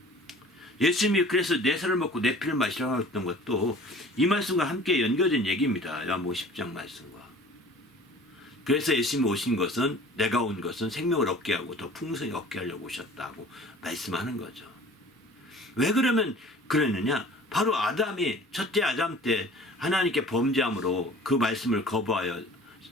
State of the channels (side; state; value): both; normal; correlation 0.46